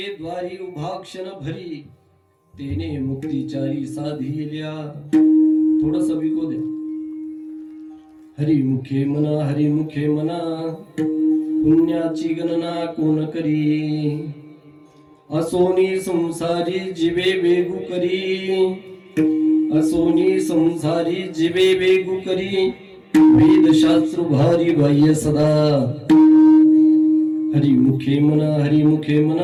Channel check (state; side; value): identical; both; correlation 1.00